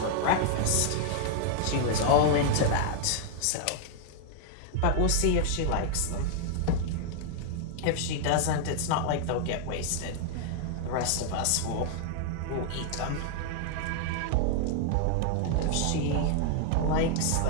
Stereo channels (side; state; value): both; different; correlation 0.00